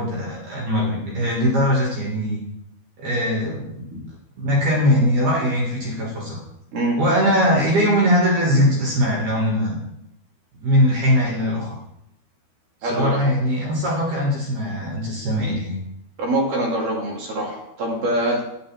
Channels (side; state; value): left; late; 12 ms